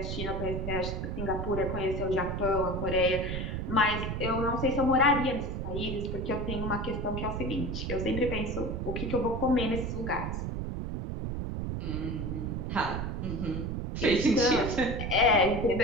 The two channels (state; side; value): noise; right; rumble, 3 dB below the sound